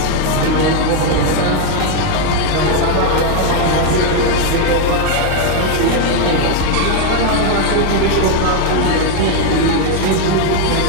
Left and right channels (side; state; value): both; different; correlation 0.01